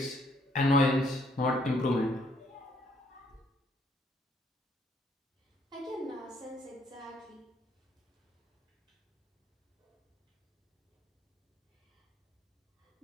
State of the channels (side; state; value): both; normal; correlation 0.67